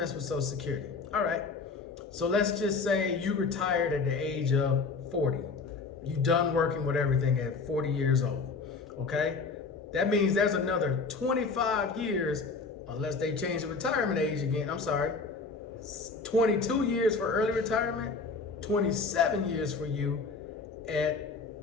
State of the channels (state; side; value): quieter; right; 4.4 dB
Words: with Social Security. All right. So let's just say you retired at the age of 40. You done working with everything at 40 years old, okay? That means there's another 25 years, unless they change the retirement age again. I'm sorry, 22 years for early retirement, 27 years for you at,